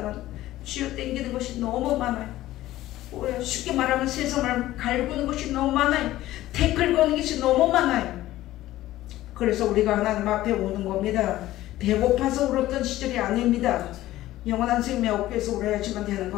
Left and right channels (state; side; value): quieter; right; 15.3 dB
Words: 쥐어 땡기는 것이 너무 많아요. 쉽게 말하면 세상을 갈구는 것이 너무 많아요. 태클 거는 것이 너무 많아요. 그래서 우리가 하나님 앞에 오는 겁니다. 배고파서 울었던 시절이 아닙니다. 영원한 생명 얻기 위해서 울어야지만 되는